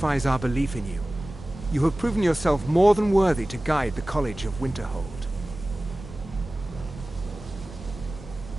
our belief in you. You have proven yourself more than worthy to guide the College of Winterhold.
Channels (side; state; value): both; normal; correlation 0.97